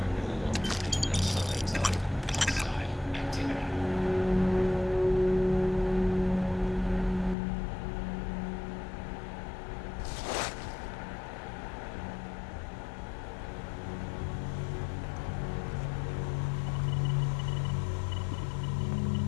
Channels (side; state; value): right; drops out; at 7.4 s